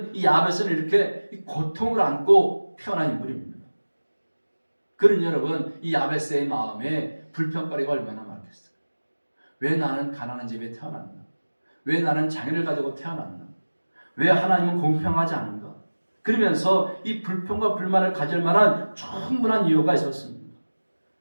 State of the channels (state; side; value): inverted; both; correlation -1.00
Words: 이 야베스는 이렇게 이 고통을 안고 태어난 인물입니다. 그러니 여러분, 이 야베스의 마음에 불평거리가 얼마나 많겠어요? 왜 나는 가난한 집에 태어났나? 왜 나는 장애를 가지고 태어났나? 왜 하나님은 공평하지 않은가? 그러면서 이 불평과 불만을 가질 만한 충분한 이유가 있었습니다.